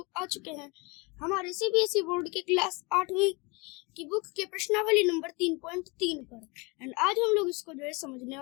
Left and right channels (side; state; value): right; quieter; 27.8 dB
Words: आ चुके हैं हमारे सीबीएसई बोर्ड के क्लास 8वीं की बुक के प्रश्नावली नंबर 3.3 पर। एंड आज हम लोग इसको जो है समझने